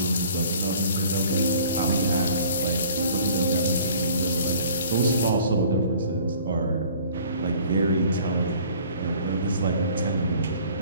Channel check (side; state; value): both; inverted; correlation -0.52